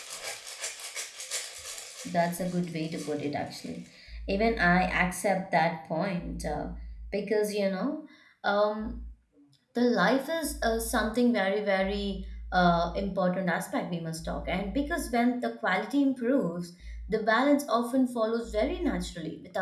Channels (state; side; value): identical; both; correlation 1.00